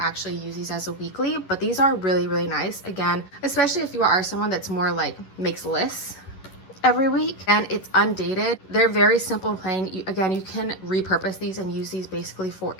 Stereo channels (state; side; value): late; right; 11 ms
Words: use these as a weekly, but these are really, really nice. Again, especially if you are someone that's more like makes lists every week, and it's undated. They're very simple and plain. Again, you can repurpose these and use these basically for